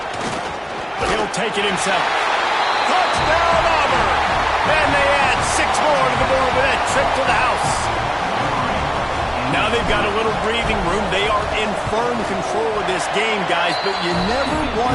He'll take it himself. Touchdown, Auburn! And they add 6 more to the board with that trip to the house. Now they've got a little breathing room. They are in firm control of this game, guys, but you never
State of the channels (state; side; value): identical; both; correlation 1.00